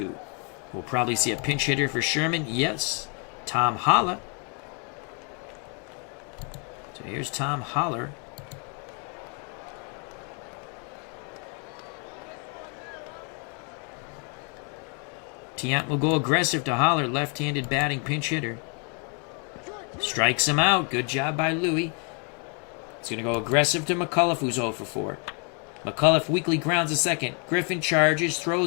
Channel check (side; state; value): right; quieter; 36.9 dB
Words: We'll probably see a pinch hitter for Sherman. Yes. Tom Holler. So here's Tom Holler. Tiant will go aggressive to Holler, left-handed batting pinch hitter. Strikes him out. Good job by Louie. He's going to go aggressive to McCullough, who's 0 for 4. McCullough weakly grounds a second. Griffin charges,